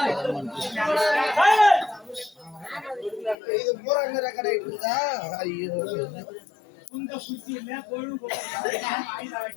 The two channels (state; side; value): drops out; right; at 3.4 s